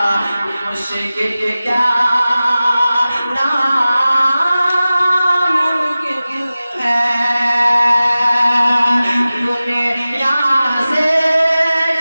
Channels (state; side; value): inverted; both; correlation -0.96